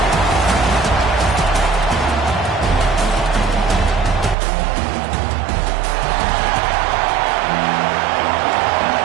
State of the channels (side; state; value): left; drops out; at 4.4 s